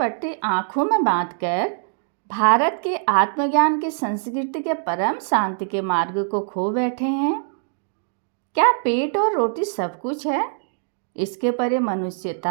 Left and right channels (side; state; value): left; silent; digital silence